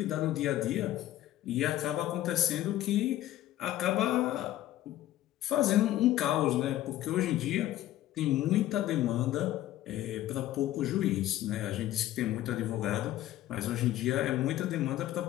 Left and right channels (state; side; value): quieter; right; 13.9 dB